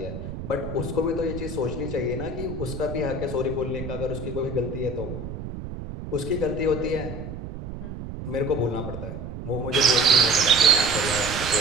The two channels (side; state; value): right; noise; rumble, 9 dB below the sound